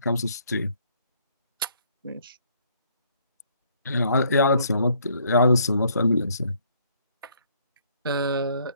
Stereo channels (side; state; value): both; inverted; correlation -0.65